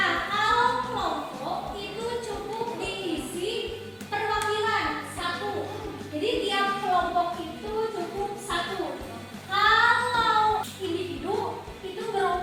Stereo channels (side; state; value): both; identical; correlation 1.00